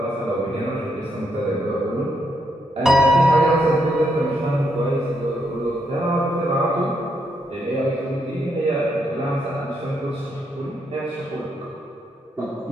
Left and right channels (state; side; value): normal; both; correlation 0.78